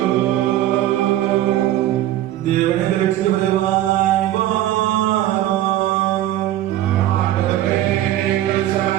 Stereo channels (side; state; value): left; quieter; 13.5 dB